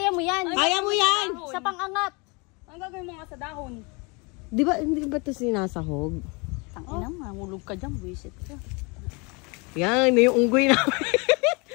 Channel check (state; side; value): quieter; right; 29.5 dB